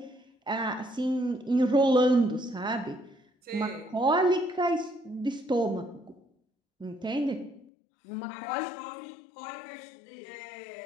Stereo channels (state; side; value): drops out; right; at 7.7 s